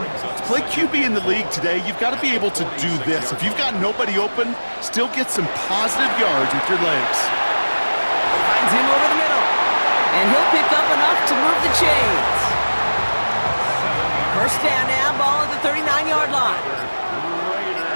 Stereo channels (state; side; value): inverted; both; correlation -1.00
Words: to play QB in the league today, you've got to be able to do this. If you've got nobody open, still get some positive yards with your legs. Finds him over the middle. And he'll pick up enough to move the chains. 1st down now, ball at the 39-yard line.